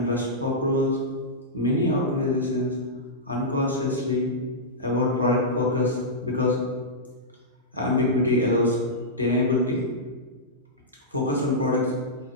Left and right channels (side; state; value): both; normal; correlation -0.12